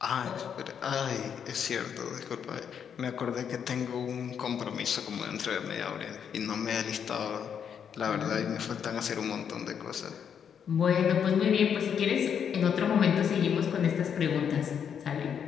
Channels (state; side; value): quieter; right; 7.8 dB